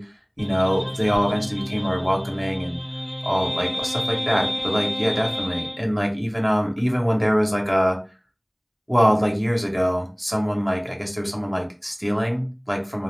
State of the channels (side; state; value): both; identical; correlation 1.00